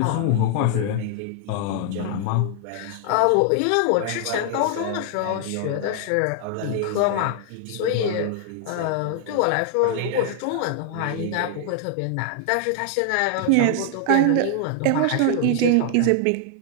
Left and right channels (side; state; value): both; different; correlation 0.00